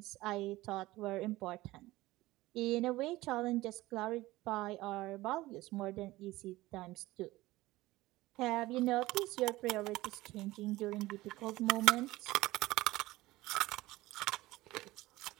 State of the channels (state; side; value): quieter; left; 18.4 dB